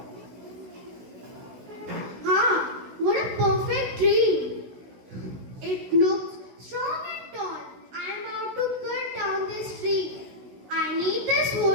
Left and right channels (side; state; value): left; late; 16 ms